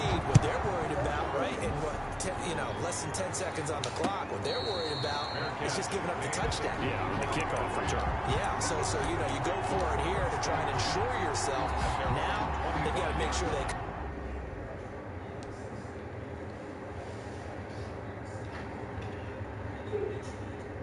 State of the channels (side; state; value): both; identical; correlation 1.00